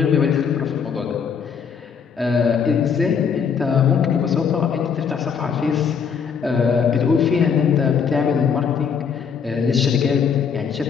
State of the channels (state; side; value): quieter; right; 6.7 dB